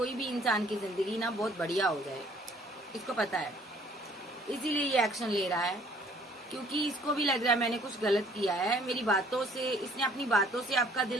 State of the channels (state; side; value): normal; both; correlation 0.59